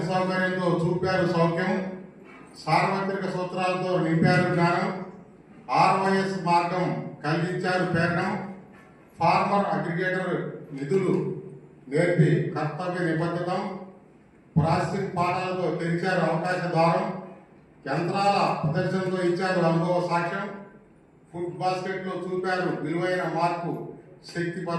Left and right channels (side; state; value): both; identical; correlation 1.00